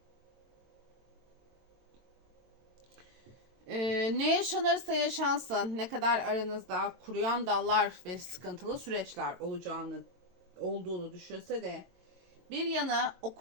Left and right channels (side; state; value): left; late; 22 ms